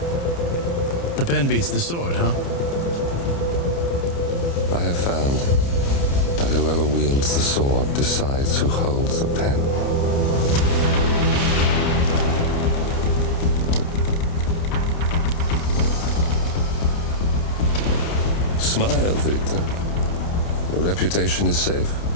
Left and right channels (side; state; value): right; late; 29 ms